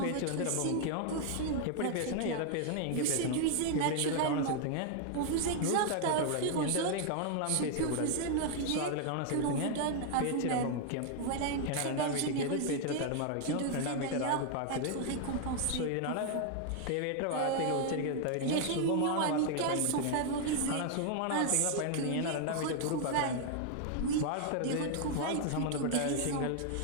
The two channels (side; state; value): both; different; correlation 0.00